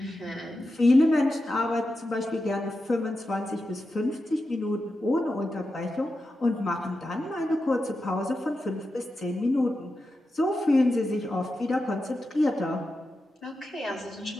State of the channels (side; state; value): both; normal; correlation 0.90